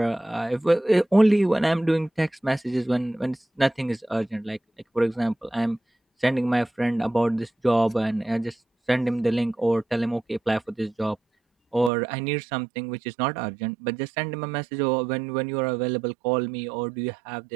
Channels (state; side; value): drops out; left; at 11.9 s